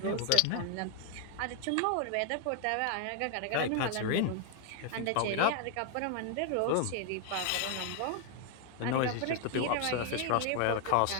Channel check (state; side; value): different; both; correlation 0.00